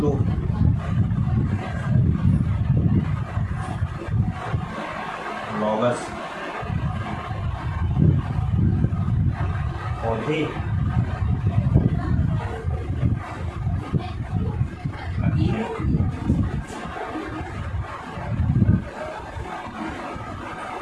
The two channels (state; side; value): identical; both; correlation 1.00